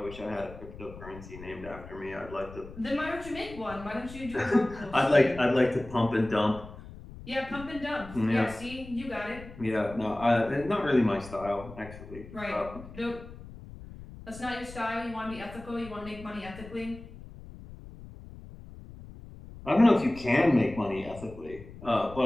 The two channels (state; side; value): noise; left; rumble, 15 dB below the sound